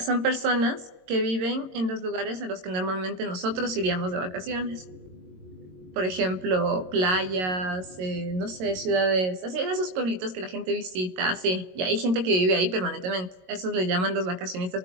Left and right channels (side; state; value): left; late; 22 ms